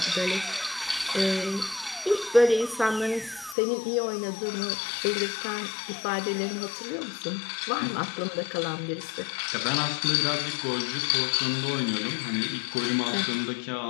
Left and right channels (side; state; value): right; drops out; at 3.6 s